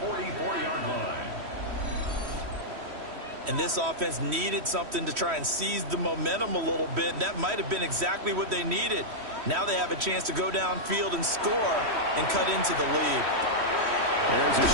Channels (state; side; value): late; left; 3.1 ms